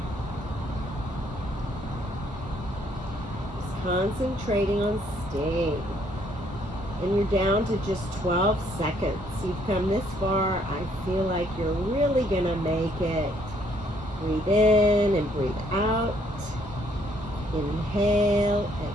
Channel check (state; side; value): normal; both; correlation 0.67